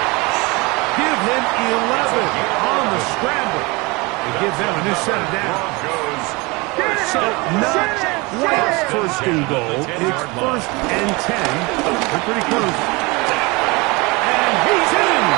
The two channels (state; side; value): quieter; left; 25.7 dB